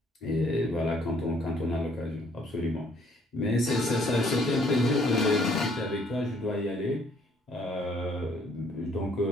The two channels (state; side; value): normal; both; correlation 0.63